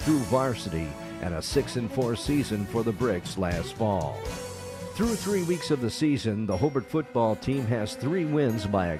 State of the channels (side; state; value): both; identical; correlation 1.00